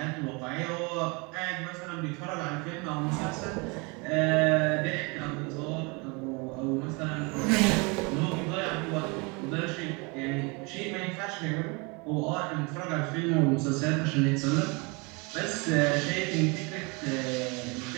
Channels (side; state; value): left; quieter; 29.4 dB